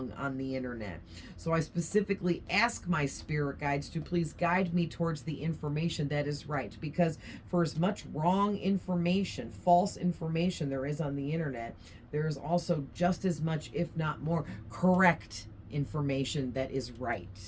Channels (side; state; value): both; identical; correlation 1.00